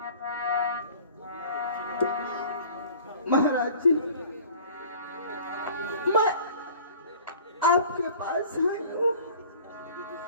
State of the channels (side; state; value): both; inverted; correlation -0.46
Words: महाराज जी, मैं आपके पास आई हूँ।